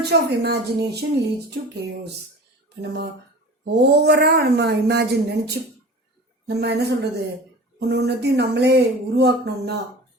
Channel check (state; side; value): normal; both; correlation 0.37